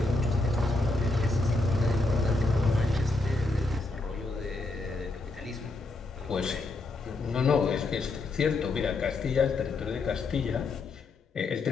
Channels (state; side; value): quieter; right; 3.1 dB